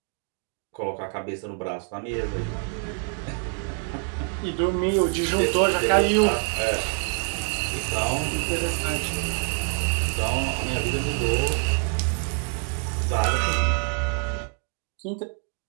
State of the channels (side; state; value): left; quieter; 38.6 dB